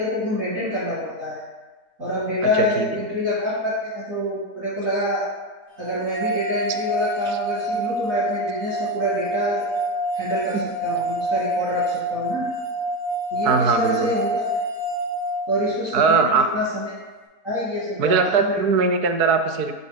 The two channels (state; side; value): late; left; 4.6 ms